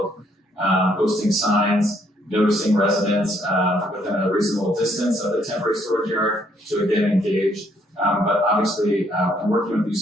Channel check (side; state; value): both; normal; correlation 0.69